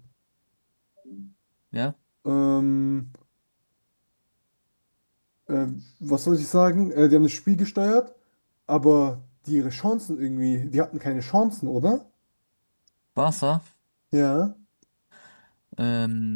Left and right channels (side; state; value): both; inverted; correlation -1.00